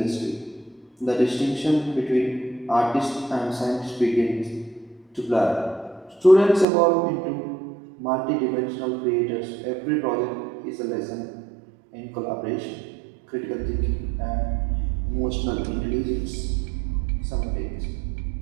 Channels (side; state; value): left; drops out; at 6.7 s